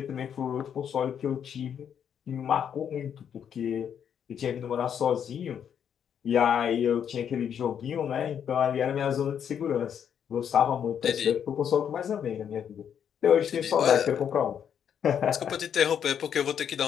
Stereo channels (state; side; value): quieter; right; 8.4 dB